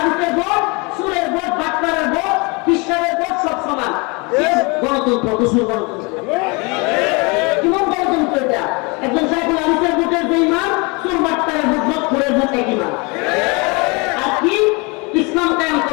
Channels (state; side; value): quieter; right; 28.9 dB